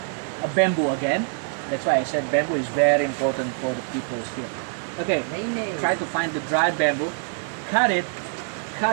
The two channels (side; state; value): left; silent; 58 dB below the other